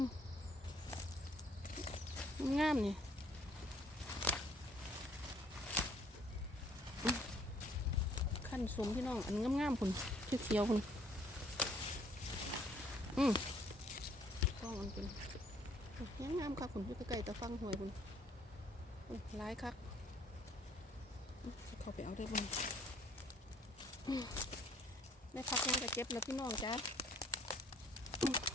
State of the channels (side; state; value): both; normal; correlation 0.61